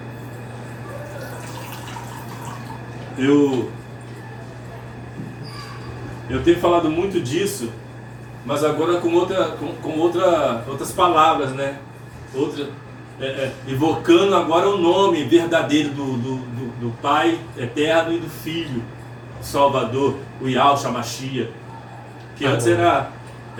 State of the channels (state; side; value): identical; both; correlation 1.00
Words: Eu tenho falado muito disso, mas agora com outras palavras, né? Evocando agora o nome verdadeiro do Pai Eterno e do Filho Salvador, o Yahshua Mashiach. Que antes